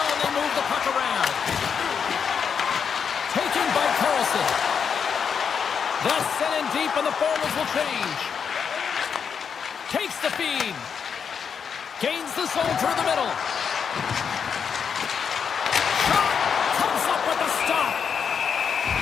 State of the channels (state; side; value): quieter; right; 6.8 dB